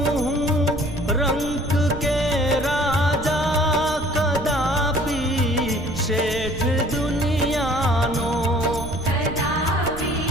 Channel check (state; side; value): noise; right; rumble, 10 dB below the sound